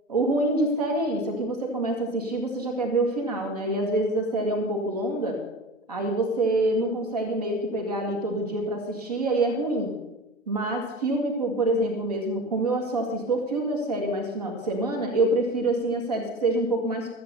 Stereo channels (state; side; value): normal; both; correlation 0.35